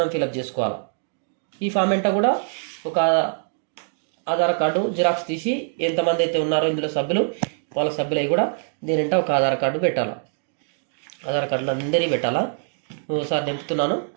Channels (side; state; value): left; silent; digital silence